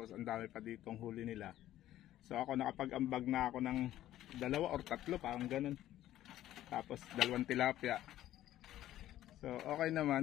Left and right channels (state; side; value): quieter; right; 13.4 dB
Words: ang dami pa ditong huli nila. So, ako nakapag-ambag na ako ng 2 or 3, parang ganun. Tapos, 2 tilapia. So, okay